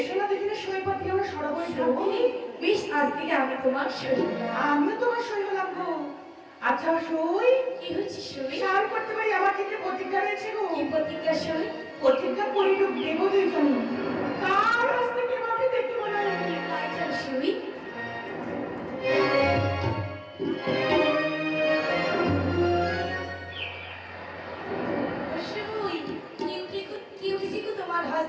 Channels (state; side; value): identical; both; correlation 1.00